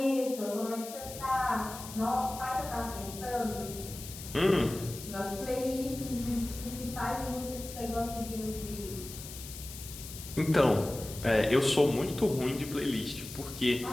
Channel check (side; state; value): left; noise; hiss, 12 dB below the sound